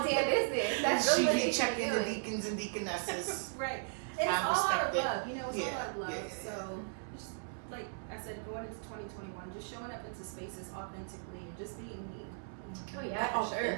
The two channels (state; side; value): silent; left; digital silence